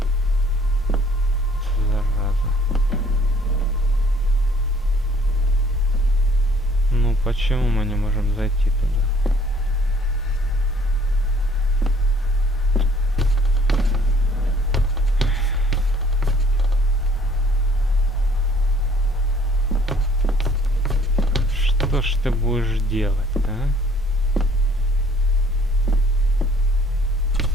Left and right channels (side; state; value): both; normal; correlation 0.58